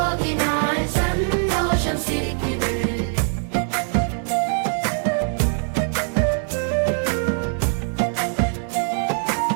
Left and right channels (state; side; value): silent; left; 57 dB below the other